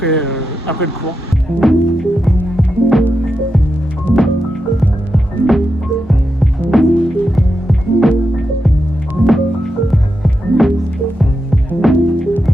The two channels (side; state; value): both; normal; correlation 0.87